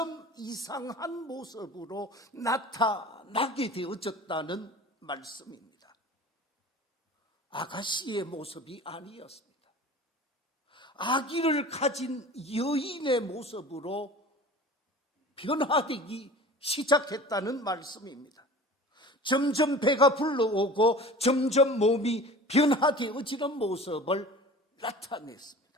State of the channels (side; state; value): both; normal; correlation 0.40